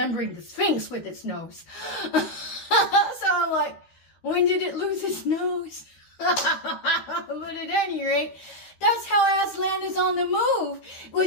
the Sphinx with its nose. So I'm like, when did it lose its nose? But at any rate, that's how Aslan is on the move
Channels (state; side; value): late; right; 13 ms